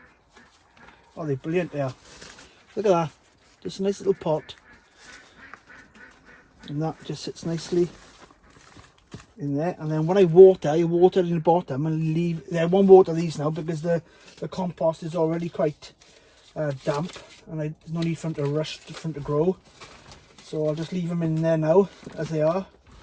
Oh, they're brilliant there. Look at that. Just a nice little pot. And that just sits nicely in there. And then when I water it in the bottom and leave. I won't water these now because the compost is already quite damp. And there's no need for them to rush, for them to grow. So I'll just leave them in there now as they are.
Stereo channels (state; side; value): identical; both; correlation 1.00